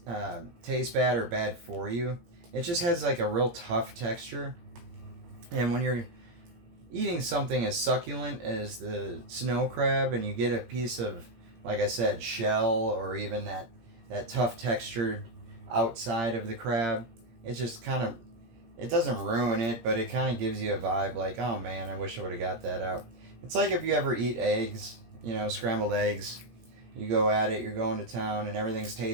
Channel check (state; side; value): late; left; 17 ms